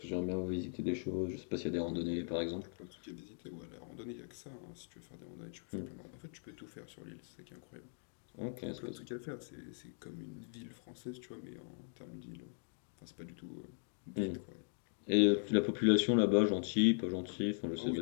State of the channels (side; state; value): right; silent; digital silence